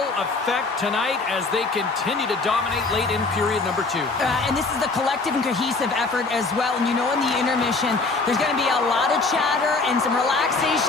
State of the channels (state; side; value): quieter; right; 3.7 dB